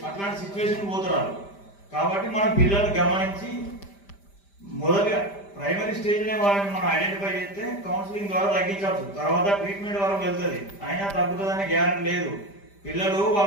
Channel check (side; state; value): right; late; 5.0 ms